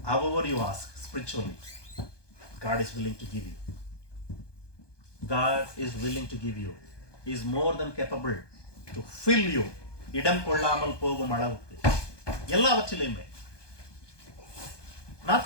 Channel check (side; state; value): right; late; 1.2 ms